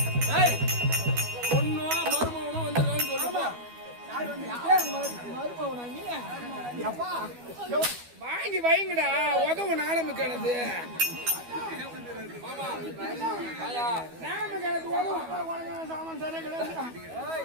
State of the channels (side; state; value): left; late; 12 ms